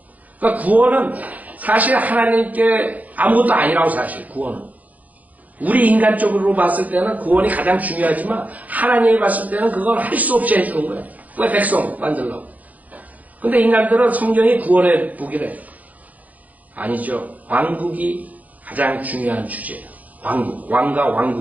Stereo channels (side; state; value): left; late; 0.077 ms